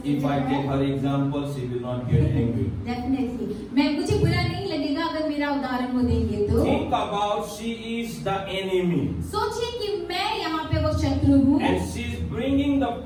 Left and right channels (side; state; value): both; identical; correlation 1.00